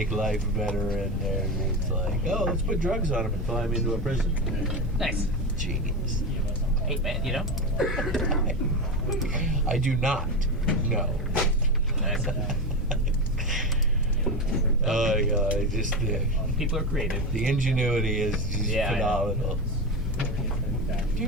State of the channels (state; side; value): normal; both; correlation 0.19